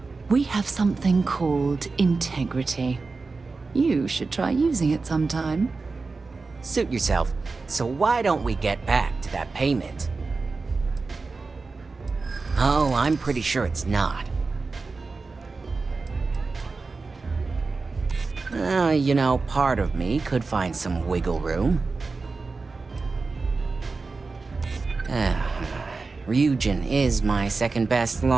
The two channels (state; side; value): quieter; left; 4.1 dB